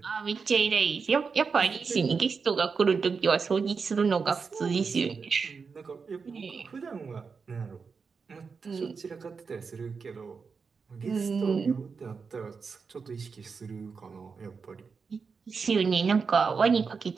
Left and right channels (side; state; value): left; quieter; 5.3 dB